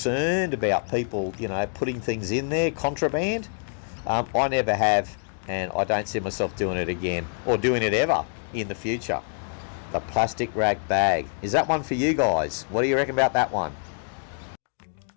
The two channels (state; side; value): silent; right; digital silence